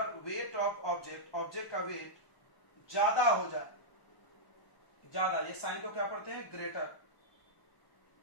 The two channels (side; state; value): right; late; 1.0 ms